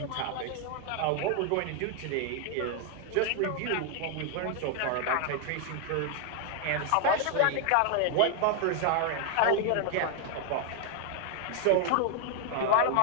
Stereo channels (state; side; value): different; both; correlation 0.00